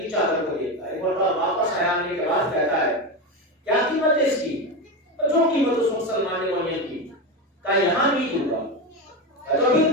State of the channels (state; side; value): normal; both; correlation 0.17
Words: چادر کو دیکھتا ہے۔ ایک بار واپس آنے کے بعد کہتا ہے کیا قیمت ہے اس کی؟ جو قیمت اس مسلمان نے معین کی۔ کہا یہاں نہیں دوں گا۔ تو پھر